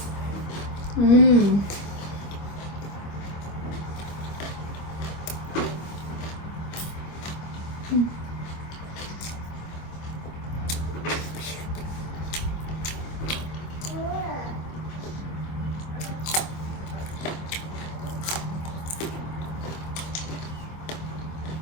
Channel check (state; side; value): late; right; 25 ms